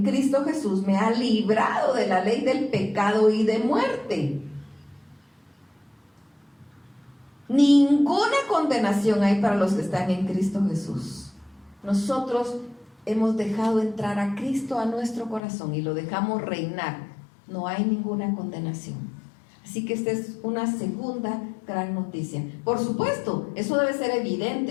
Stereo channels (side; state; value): right; drops out; at 15.4 s